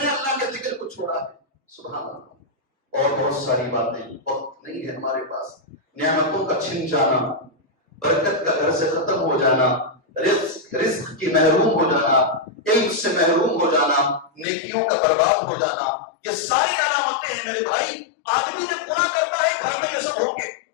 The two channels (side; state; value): right; drops out; at 14.5 s